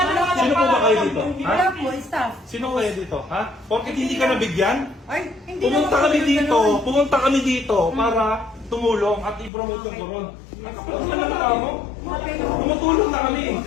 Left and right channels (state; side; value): drops out; right; at 9.5 s